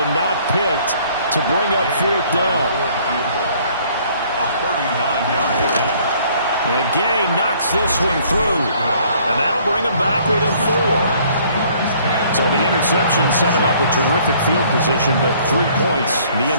not picked to bring up 4th down. And Gay knocks this one through, and that'll bring him back within 4. So the interception set him up with terrific field position, but 3 points, the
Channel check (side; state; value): both; inverted; correlation -0.59